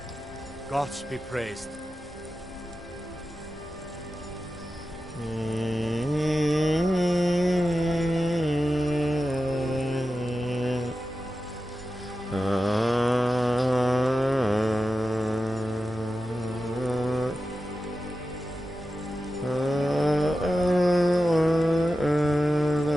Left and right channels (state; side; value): normal; both; correlation 0.92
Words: Gods be praised.